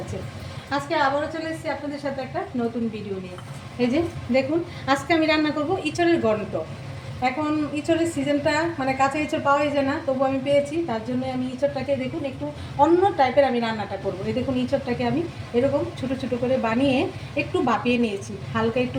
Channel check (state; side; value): identical; both; correlation 1.00